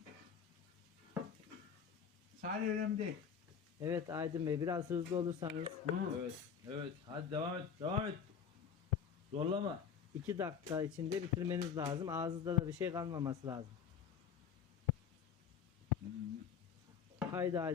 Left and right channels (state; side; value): quieter; right; 7.2 dB